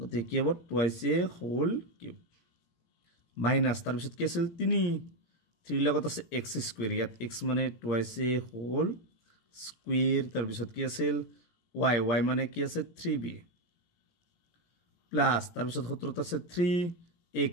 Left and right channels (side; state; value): right; late; 17 ms